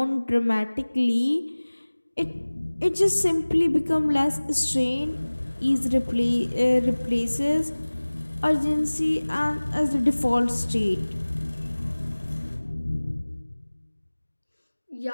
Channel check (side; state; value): both; inverted; correlation -1.00